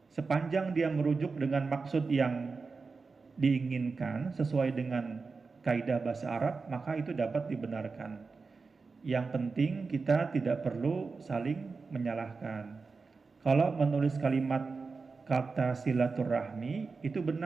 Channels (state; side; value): quieter; left; 4.4 dB